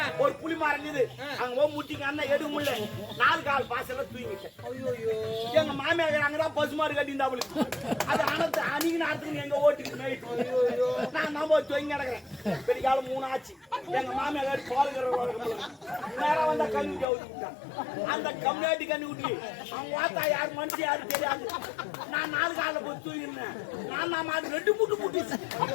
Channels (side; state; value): right; drops out; at 17.1 s